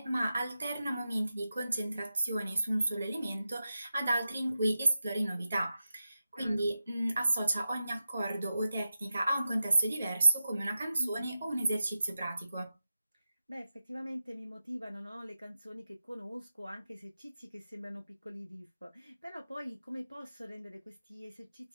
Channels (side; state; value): both; inverted; correlation -0.91